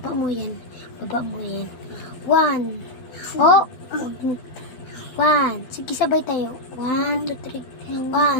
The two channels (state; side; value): late; right; 12 ms